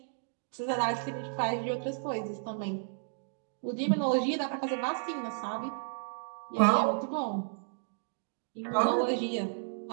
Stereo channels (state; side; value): silent; left; digital silence